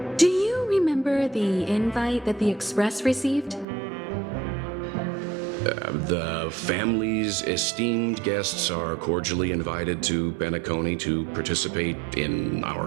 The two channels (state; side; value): drops out; left; at 3.7 s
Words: Do you remember the invite that the Express received? The family's esteemed guests are cordially invited to Penacony to participate in